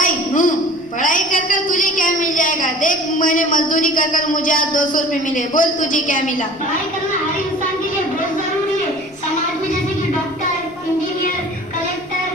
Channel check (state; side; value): noise; left; rumble, 28 dB below the sound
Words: पढ़ाई कर कर तुझे क्या मिल जाएगा? देख, मैंने मजदूरी कर कर मुझे आज 200 रुपए मिले। बोल तुझे क्या मिला? पढ़ाई करना हर इंसान के लिए बहुत जरूरी है। समाज में जैसे कि डॉक्टर, इंजीनियर, कलेक्टर,